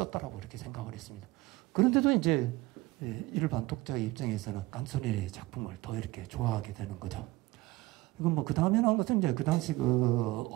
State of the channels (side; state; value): left; quieter; 19.5 dB